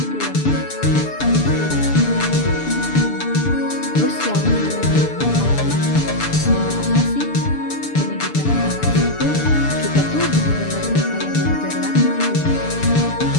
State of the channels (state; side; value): late; right; 6.8 ms